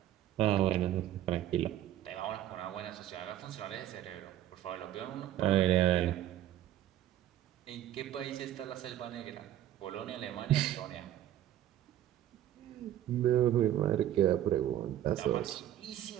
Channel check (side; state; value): left; quieter; 12.3 dB